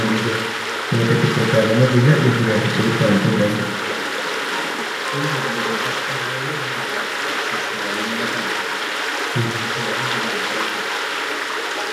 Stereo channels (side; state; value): both; identical; correlation 1.00